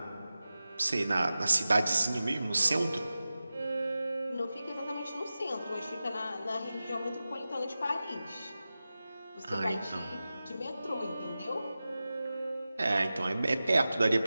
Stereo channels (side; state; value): both; inverted; correlation -0.94